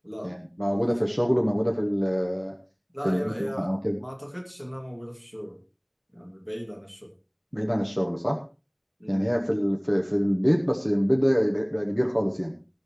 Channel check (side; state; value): both; identical; correlation 1.00